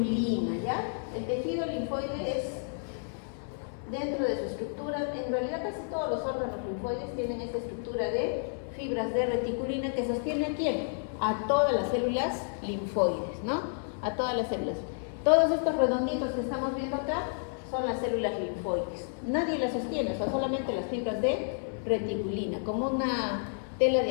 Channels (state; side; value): silent; right; 57 dB below the other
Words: ¿ya? El tejido linfoide es, dentro de su estructura, en realidad casi todos los órganos linfoides tienen esta estructura de fibras de reticulina que sostiene a ¿quién? A todas las células linfoides, ¿no? A todas las células. Todos estos redonditos que estamos viendo acá son las células linfoides. Nadie las sostiene, o sea, solamente las fibras de reticulina. Como una tela